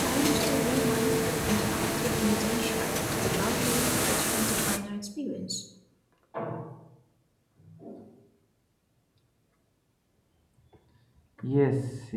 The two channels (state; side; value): identical; both; correlation 1.00